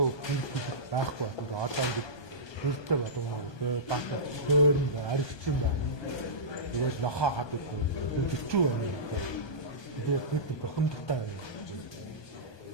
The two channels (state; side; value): late; right; 1.2 ms